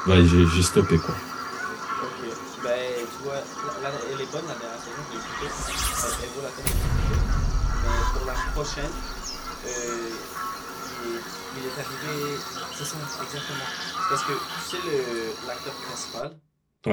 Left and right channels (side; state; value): both; identical; correlation 1.00